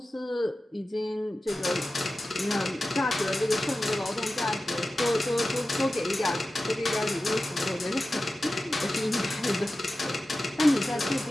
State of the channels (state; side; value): normal; both; correlation 0.94